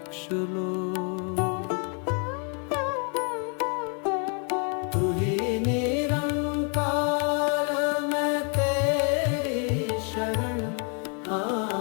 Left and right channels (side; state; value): right; quieter; 40.0 dB